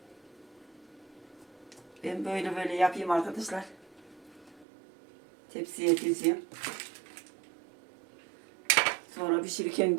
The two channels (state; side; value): drops out; left; at 4.7 s